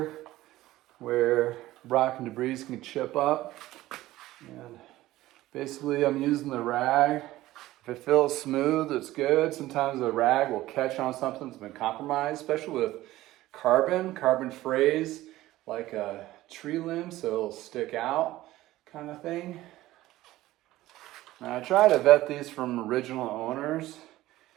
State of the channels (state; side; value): quieter; left; 16.3 dB